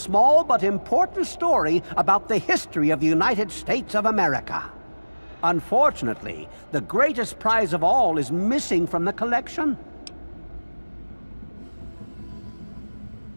but important story about the history of the United States of America. Unfortunately, the greatest prize of all is missing from the collection.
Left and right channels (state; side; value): inverted; both; correlation -1.00